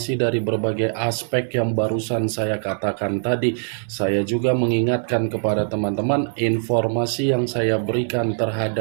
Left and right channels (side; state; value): left; silent; 64 dB below the other